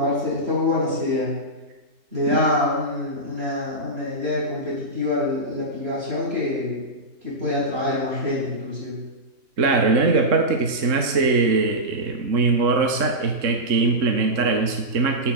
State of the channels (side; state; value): left; late; 3.6 ms